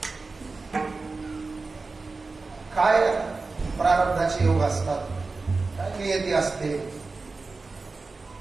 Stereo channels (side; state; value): left; quieter; 3.9 dB